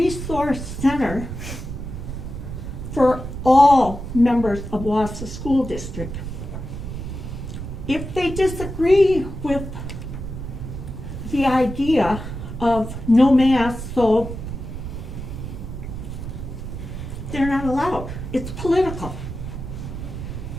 center for all members of Wausau School District. If they disagree with the idea of no masks, so they're not allowed. It's political.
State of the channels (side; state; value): right; noise; rumble, 7 dB below the sound